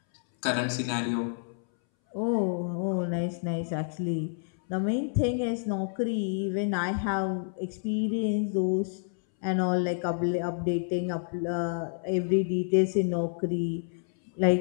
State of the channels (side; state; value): right; silent; 59 dB below the other